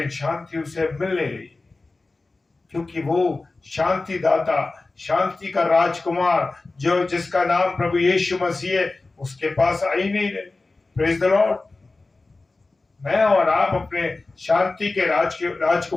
शांति उसे मिल नहीं रही, क्योंकि वो शांति दाता, शांति का राजकुमार जो जिसका नाम प्रभु यीशु मसीह है, उसके पास आ ही नहीं रहे। Praise the Lord. मैं और आप अपने शांति के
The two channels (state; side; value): quieter; right; 3.4 dB